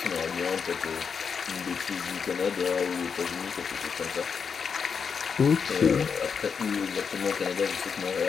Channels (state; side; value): quieter; right; 6.2 dB